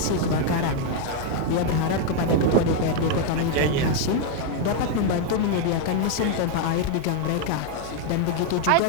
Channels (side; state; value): both; different; correlation 0.00